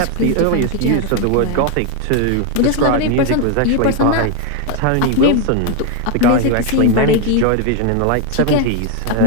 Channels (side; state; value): both; different; correlation 0.01